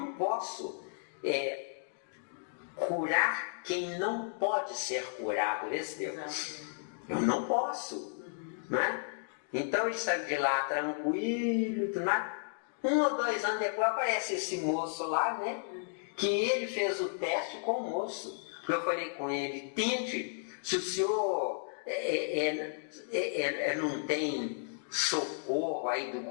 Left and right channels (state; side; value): silent; right; digital silence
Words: posso curar quem não pode ser curado. Eu não posso. Né? Então ele saiu de lá tranquilo, tudo mais. 1 ou 2 anos depois aparece esse moço lá, né? Que ele fez o teste com o moço. Eu falei com ele, tente, se o senhor não tem socorro aí do